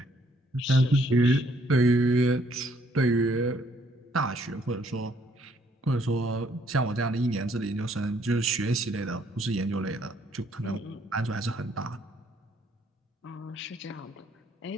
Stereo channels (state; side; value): normal; both; correlation 0.67